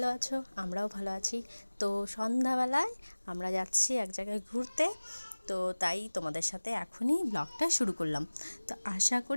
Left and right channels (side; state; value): both; inverted; correlation -1.00